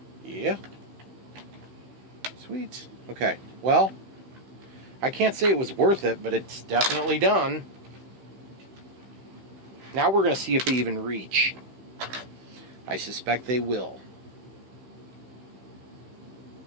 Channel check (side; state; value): left; late; 15 ms